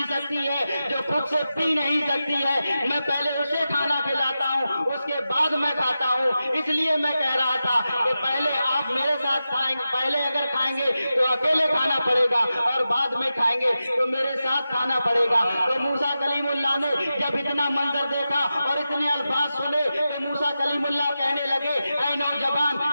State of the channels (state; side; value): inverted; both; correlation -0.91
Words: سکتی ہے، جو خود سے پی نہیں سکتی ہے، میں پہلے اسے کھانا کھلاتا ہوں اس کے بعد میں کھاتا ہوں، اس لیے میں کہہ رہا تھا کہ پہلے آپ میرے ساتھ کھائیں گے، پہلے اگر کھائیں گے تو اکیلے کھانا پڑے گا اور بعد میں کھائیں گے تو میرے ساتھ کھانا پڑے گا۔ تو موسیٰ کلیم اللہ نے جب اتنا منظر دیکھا اور اتنے الفاظ سنے تو موسیٰ کلیم اللہ کہنے لگے اے نوجوان،